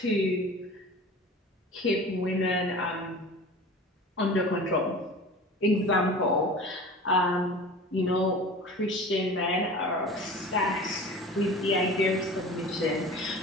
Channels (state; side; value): normal; both; correlation 0.38